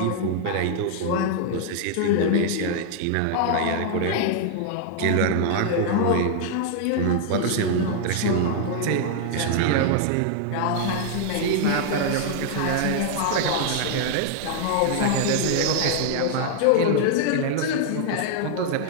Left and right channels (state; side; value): different; both; correlation 0.00